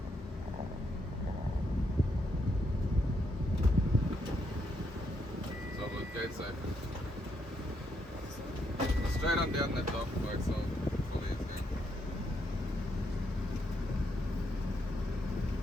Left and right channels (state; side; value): normal; both; correlation 0.77